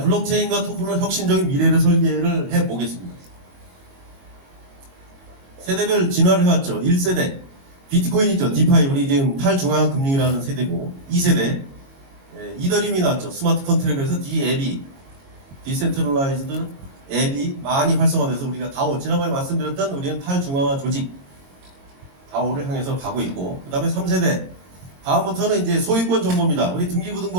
블록체인과 토큰은 혁신적인 미래를 설계를 해보겠습니다. 세대별 진화를 해왔죠. 1세대 비트코인 있죠. 디파이, 우리 지금 탈중앙화 금융이라는 세대고, 2세대 이더리움이 나왔죠. 스마트 컨트랙트에서 DAB, 디센트럴라이즈드 앱이 많이 활성화돼서 우리가 다오, 지난번에 말씀드렸던 우리는 탈중앙화 조직 다오를 향해서 가고 있고, 그 다음에 3세대 다음부터는 이제 소유권 정보입니다. 우리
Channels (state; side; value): late; left; 22 ms